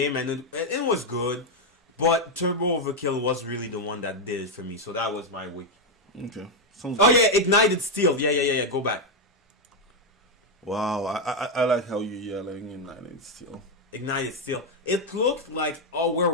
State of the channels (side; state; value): both; normal; correlation 0.03